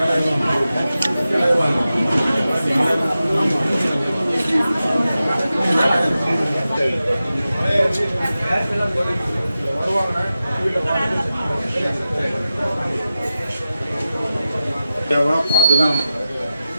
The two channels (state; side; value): inverted; both; correlation -0.92